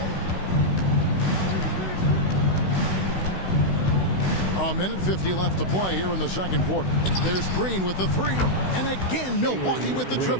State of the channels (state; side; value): late; right; 16 ms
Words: A minute 50 left to play here in the second quarter. There's Green with the 3. And again, Milwaukee with the